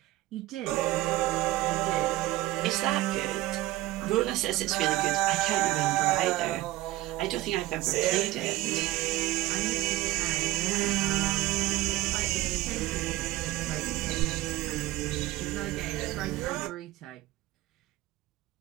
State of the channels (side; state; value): left; quieter; 17.1 dB